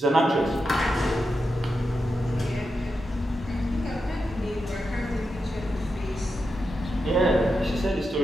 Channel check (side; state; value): both; normal; correlation 0.87